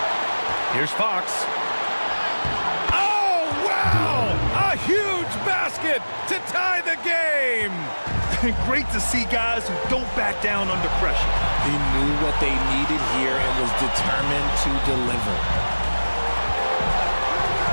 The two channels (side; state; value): both; inverted; correlation -1.00